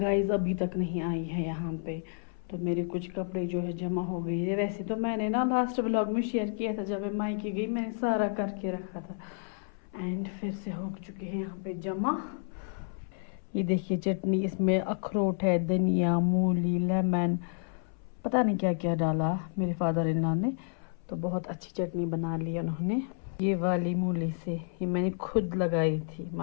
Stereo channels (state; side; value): silent; right; 57 dB below the other